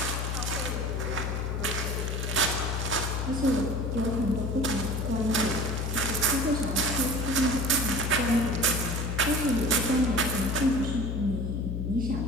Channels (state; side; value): noise; left; hum, 1 dB below the sound